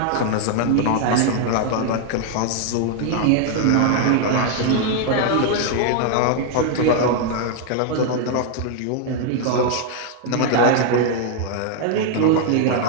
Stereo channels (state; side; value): different; both; correlation 0.00